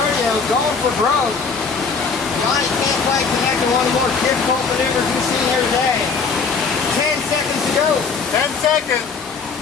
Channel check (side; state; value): right; quieter; 5.1 dB